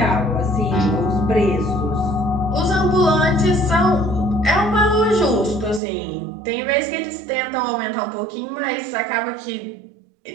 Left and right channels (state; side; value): drops out; left; at 5.8 s